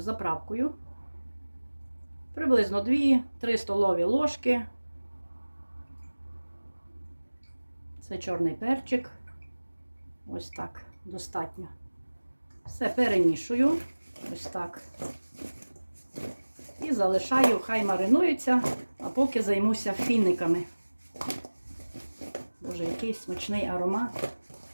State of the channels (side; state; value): both; inverted; correlation -1.00